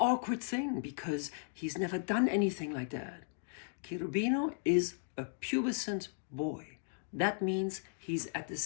thing because he's never done anything like that. Cherubino is a pubescent boy. That means he's at the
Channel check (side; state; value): right; silent; digital silence